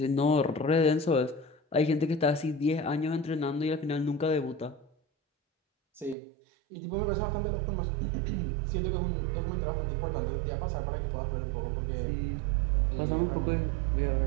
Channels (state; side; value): drops out; left; at 6.2 s